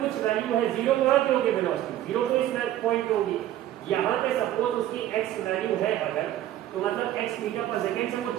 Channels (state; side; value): quieter; left; 12.9 dB